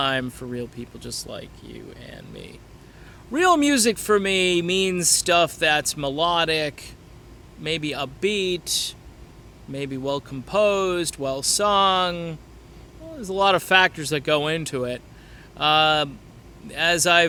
for real people just like you and me. Real music for me means stuff that's melodic, maybe upbeat, maybe well composed, well sung. Well, there's a lot of factors that go into it. As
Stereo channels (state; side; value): identical; both; correlation 1.00